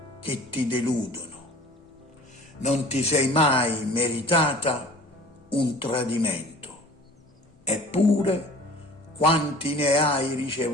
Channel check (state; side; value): normal; both; correlation 0.46